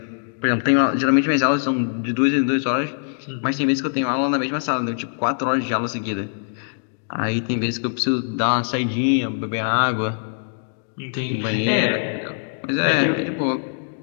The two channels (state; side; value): silent; right; digital silence